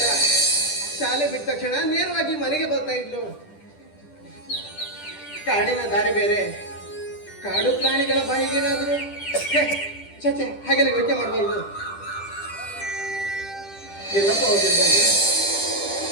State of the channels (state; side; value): late; right; 10 ms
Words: ಶಾಲೆ ಬಿಟ್ಟ ತಕ್ಷಣ ನೇರವಾಗಿ ಮನೆಗೆ ಬರ್ತಾ ಇದ್ಲು. ಕಾಡಿನ ದಾರಿ ಬೇರೆ, ಕಾಡು ಪ್ರಾಣಿಗಳ ಬಾಯಿಗೇನಾದ್ರು ಚಚೆ ಹಾಗೆಲ್ಲ ಯೋಚನೆ ಮಾಡಬಾರ್ದು. ಎಲ್ಲಪ್ಪ ಹೋಗಿರ್ಬೋದು.